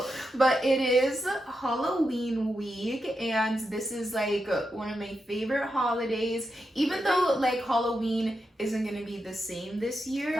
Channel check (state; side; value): normal; both; correlation 0.86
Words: but it is Halloween week, and this is like one of my favorite holidays. Even though like Halloween isn't going to be the same this